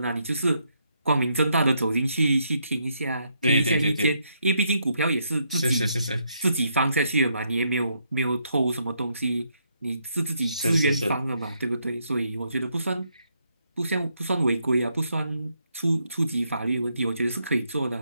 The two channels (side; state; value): both; inverted; correlation -0.76